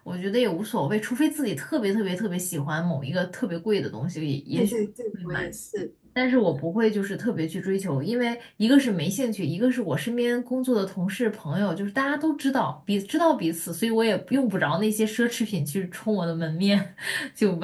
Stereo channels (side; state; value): both; identical; correlation 1.00